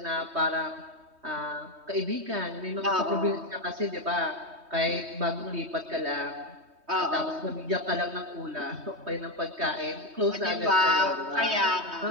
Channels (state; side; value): late; left; 3.2 ms